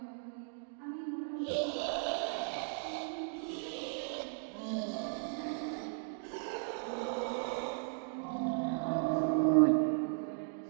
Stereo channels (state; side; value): silent; left; digital silence